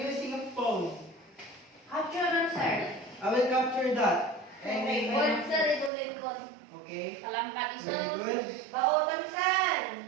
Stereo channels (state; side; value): drops out; left; at 5.9 s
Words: using a phone. Capture dun, sir. I will capture that. And Okay, Word, sir, idulit ko. okay. Palangkat iso. Very good. Baotan, sir.